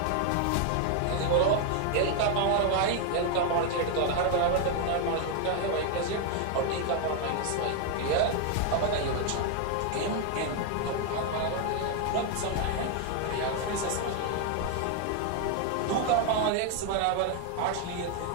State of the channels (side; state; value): both; different; correlation 0.01